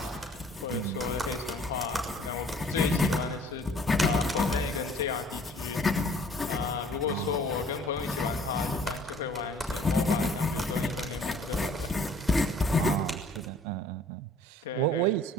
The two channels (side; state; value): both; normal; correlation 0.54